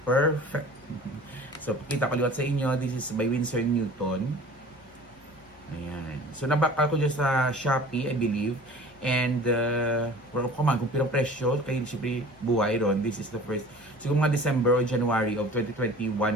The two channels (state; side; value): normal; both; correlation 0.43